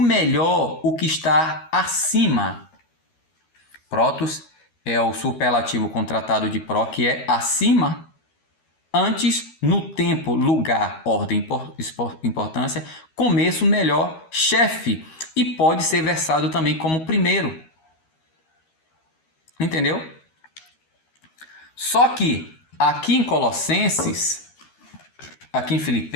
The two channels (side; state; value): right; late; 13 ms